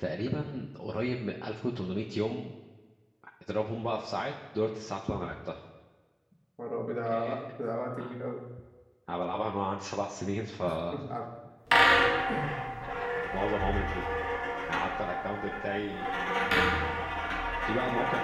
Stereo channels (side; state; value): both; identical; correlation 1.00